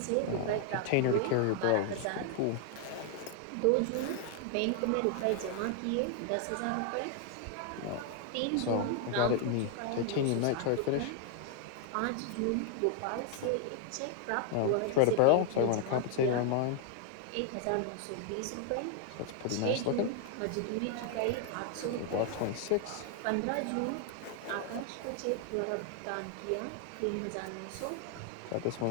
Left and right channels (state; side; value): different; both; correlation 0.00